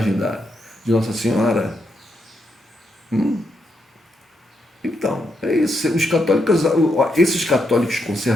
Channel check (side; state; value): both; normal; correlation 0.80